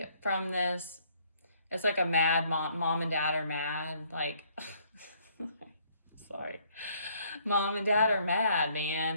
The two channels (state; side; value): inverted; both; correlation -0.64